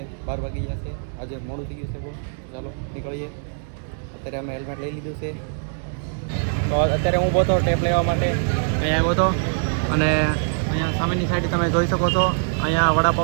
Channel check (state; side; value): silent; left; digital silence